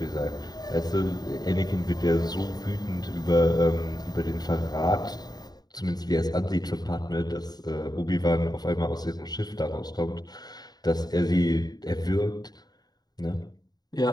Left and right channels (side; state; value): right; late; 0.19 ms